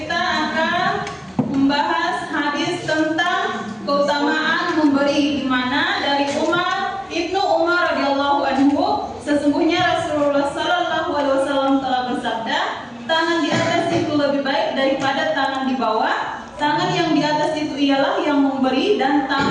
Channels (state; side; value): identical; both; correlation 1.00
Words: akan membahas hadis tentang keutamaan memberi, di mana dari Ibnu Umar radhiyallahu anhu, sesungguhnya Rasulullah sallallahu alaihi wasallam telah bersabda, tangan di atas itu lebih baik daripada tangan di bawah. Tangan yang di atas itu ialah yang memberi dan